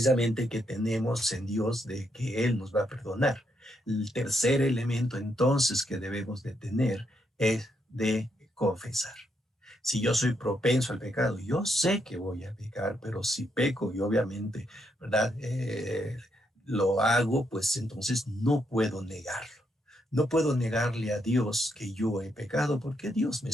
que tenemos en Dios de que Él nos va a perdonar. El tercer elemento entonces que debemos de tener es de confesar. Si yo soy propenso al pecado, yo sé que voy a pecar, pero si peco y obviamente, ¿verdad? Lo hago, pues entonces no puedo negarlo. No puedo negarle a Dios que yo he pecado porque Dios me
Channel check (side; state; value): both; normal; correlation 0.78